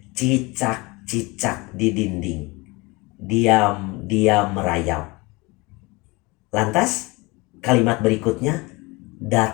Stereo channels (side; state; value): right; quieter; 24.2 dB